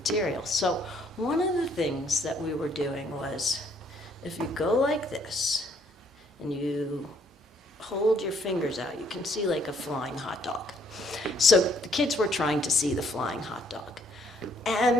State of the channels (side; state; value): both; normal; correlation 0.66